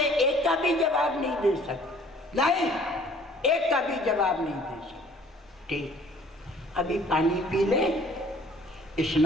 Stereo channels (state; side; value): normal; both; correlation 0.55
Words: एक का भी जवाब नहीं दे सकते। नहीं, एक का भी जवाब नहीं दे सकते। ठीक, अभी पानी पी ले,